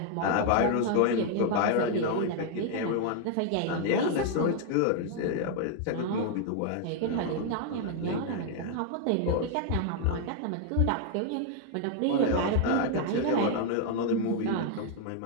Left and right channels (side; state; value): both; different; correlation 0.00